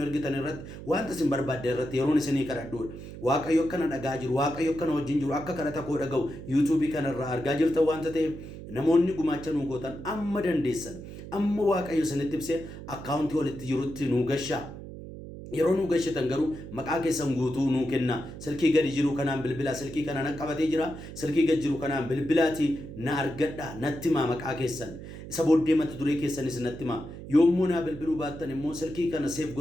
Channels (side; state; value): right; noise; hum, 12 dB below the sound